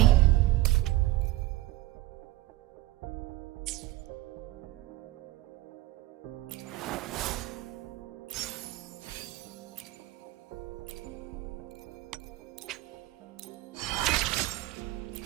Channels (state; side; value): quieter; left; 17.6 dB